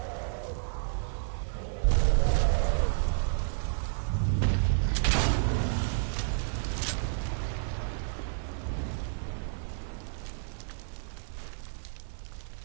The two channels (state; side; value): silent; left; 57 dB below the other